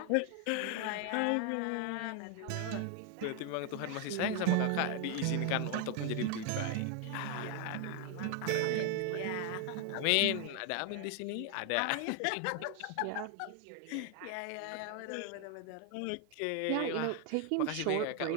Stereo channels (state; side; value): different; both; correlation 0.00